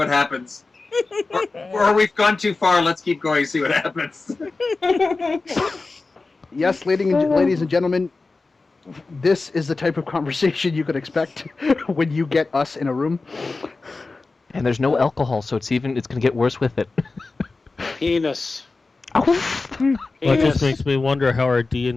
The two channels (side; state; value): right; quieter; 3.7 dB